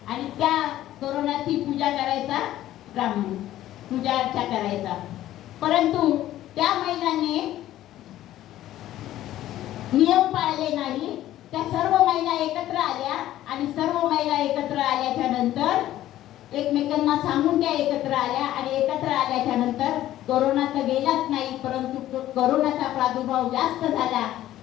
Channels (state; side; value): quieter; right; 13.7 dB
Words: आणि त्या कोरोनाची पूजा करायचा ब्राह्मण, पूजा अर्चा करायचा. परंतु त्या महिलांनी नियम पाळले नाही. त्या सर्व महिला एकत्र आल्या आणि सर्व महिला एकत्र आल्याच्या नंतर एकमेकांना सांगून त्या एकत्र आल्या आणि एकत्र आल्याच्या नंतर कोरोना तर गेलाच नाही, परंतु कोरोनाचा प्रादुर्भाव जास्त झाला